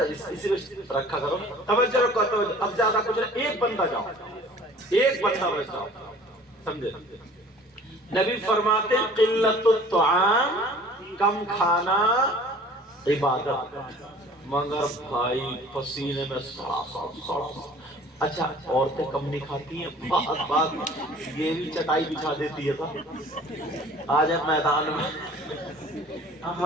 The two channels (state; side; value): normal; both; correlation 0.48